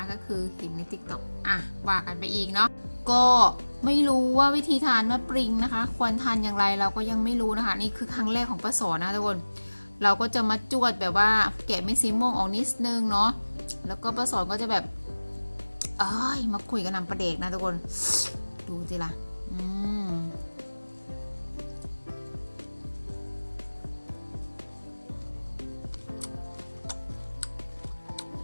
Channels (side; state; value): both; inverted; correlation -1.00